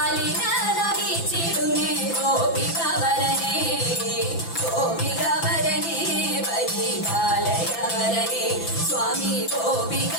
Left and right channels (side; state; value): right; late; 5.9 ms